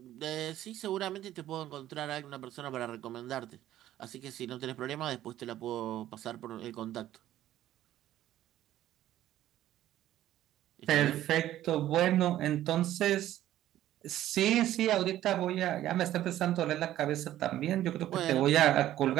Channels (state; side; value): quieter; left; 13.2 dB